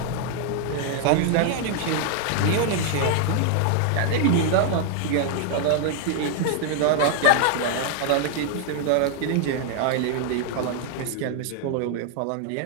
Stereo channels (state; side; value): different; both; correlation 0.00